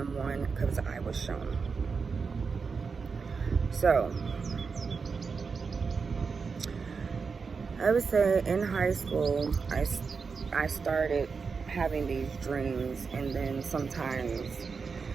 one because I was shown. So, I would say in high school, I started having these dreams, and then sometimes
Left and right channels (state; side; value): quieter; left; 5.2 dB